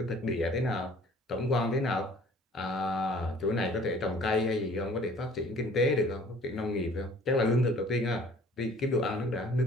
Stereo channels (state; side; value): normal; both; correlation 0.52